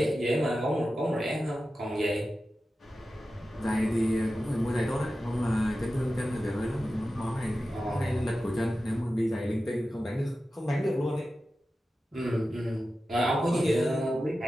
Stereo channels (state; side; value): normal; both; correlation 0.93